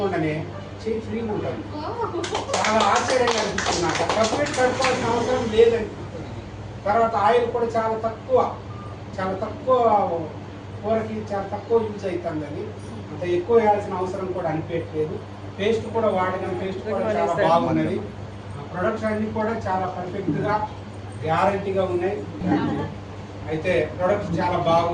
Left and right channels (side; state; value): both; identical; correlation 1.00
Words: చేయి ఫ్రీగా ఉంటుంది. చాలా ఆశ్చర్యంగా అనిపిస్తుంది నాకు. సబ్బు పెట్టి కడుక్కోవాల్సిన అవసరం లేదనిపిస్తుంది. తర్వాత ఆయిల్ కూడా చాలా తక్కువ కూరకి చాలా తక్కువ యూజ్ అవుతుంది. అది అంత ఎక్కువ వేయాల్సిన అవసరం కూడా అనిపించట్లేదు. పేస్ట్ కూడా వాడిన పేస్ట్ కూడా చాలా బాగున్నది. ప్రొడక్ట్స్ అన్నీ కూడా చాలా పర్ఫెక్ట్గా గ్యారంటీగా ఉన్నాయి. అయితే ప్రొడక్ట్స్ చాలా